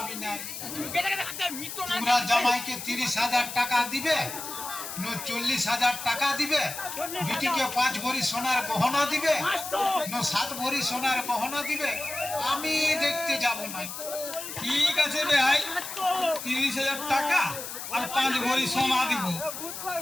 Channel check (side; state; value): left; noise; hiss, 8 dB below the sound